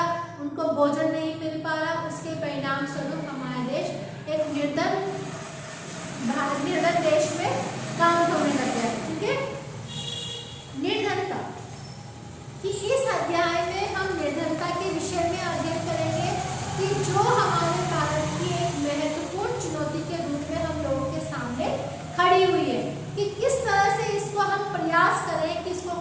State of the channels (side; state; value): both; identical; correlation 1.00